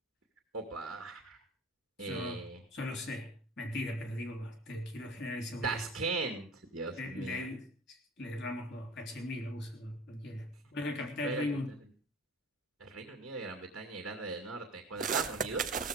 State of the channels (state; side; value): normal; both; correlation 0.41